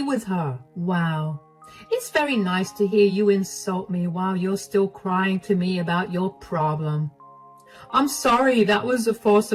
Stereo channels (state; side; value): identical; both; correlation 1.00